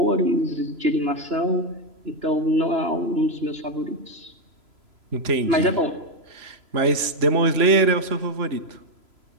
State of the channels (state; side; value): late; left; 3.0 ms